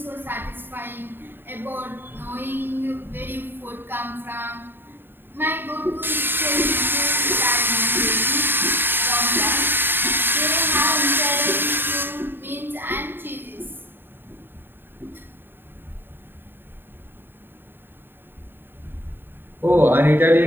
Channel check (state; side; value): late; left; 0.099 ms